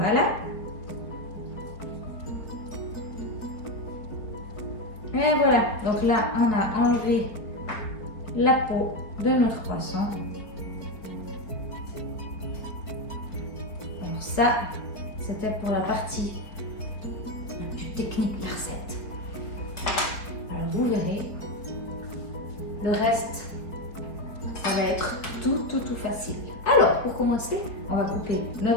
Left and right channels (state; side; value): late; right; 4.4 ms